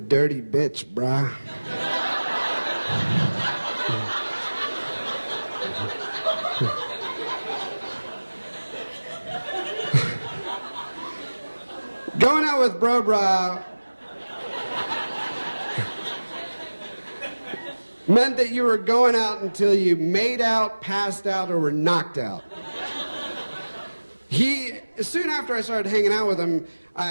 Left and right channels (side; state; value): both; inverted; correlation -1.00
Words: bitch, brah." Going out with Bro Bra meant that you were going out until you made out, passed out, or were knocked out. Soon after I started hanging out with him,